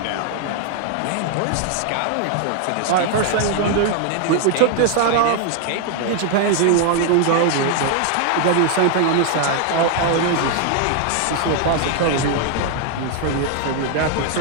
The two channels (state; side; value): different; both; correlation 0.00